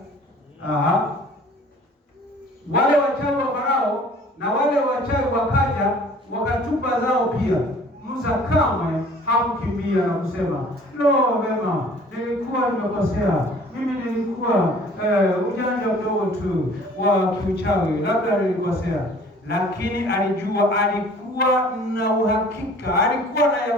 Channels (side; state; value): both; normal; correlation 0.51